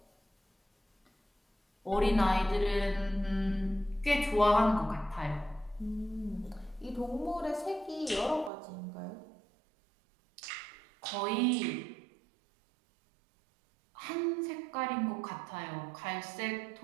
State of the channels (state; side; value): drops out; left; at 8.5 s